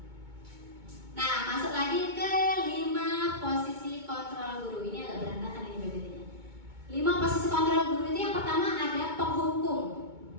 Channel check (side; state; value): left; late; 2.2 ms